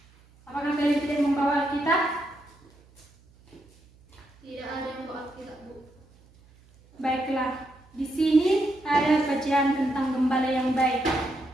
Apakah kalian tidak membawa Alkitab? Tidak ada yang bawa Alkitab, Bu. Baiklah, di sini ada bacaan tentang gembala yang baik.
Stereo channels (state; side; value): noise; right; hum, 29 dB below the sound